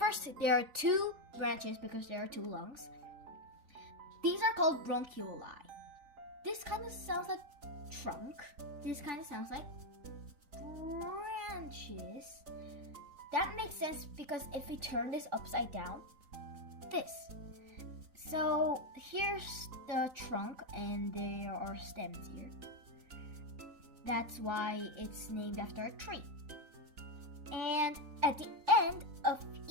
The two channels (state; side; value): late; left; 3.9 ms